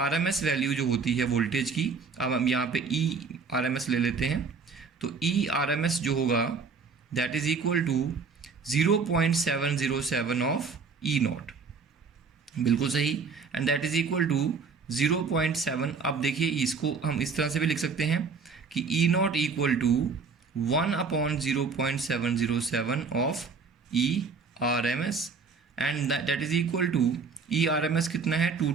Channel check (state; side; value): quieter; left; 5.0 dB